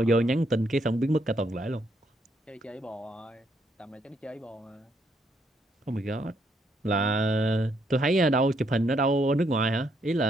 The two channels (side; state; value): both; normal; correlation 0.74